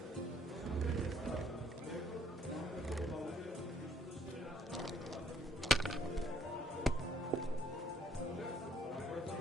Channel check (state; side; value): normal; both; correlation 0.65